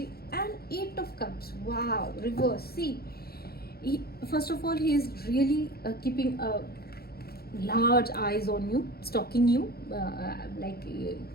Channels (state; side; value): late; right; 0.45 ms